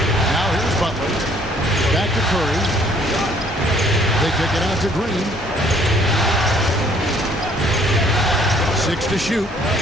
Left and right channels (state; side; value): normal; both; correlation 0.61